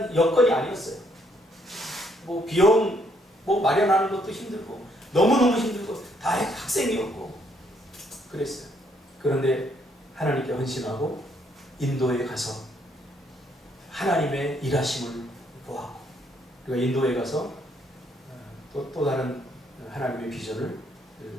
여건이 아니었어요. 뭐 비용 뭐 마련하는 것도 힘들고 너무너무 힘들고 다 학생이었고 그랬어요. 그런데 하나님께 헌신하고 인도에 가서 하나님의 일하심을 보았고 그리고 인도에 가서 또 다른 하나님의 비전을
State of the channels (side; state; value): both; normal; correlation 0.70